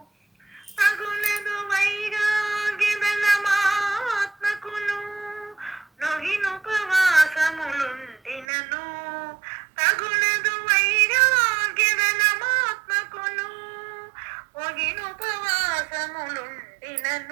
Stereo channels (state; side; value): drops out; left; at 8.5 s